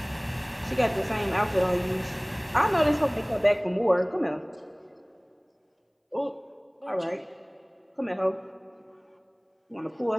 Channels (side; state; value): both; identical; correlation 1.00